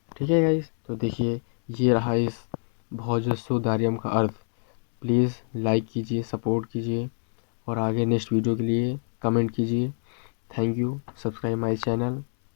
ठीक है गाइस, तो देखिए ये रहा इस भोजस्सोदार्यम का अर्थ। प्लीज़ लाइक कीजिए, सपोर्ट कीजिए, और आगे नेक्स्ट वीडियो के लिए कमेंट कीजिए। Thank you. Subscribe my channel.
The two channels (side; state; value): right; silent; digital silence